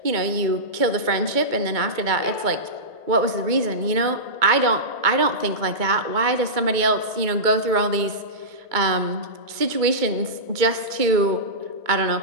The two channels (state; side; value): late; left; 2.2 ms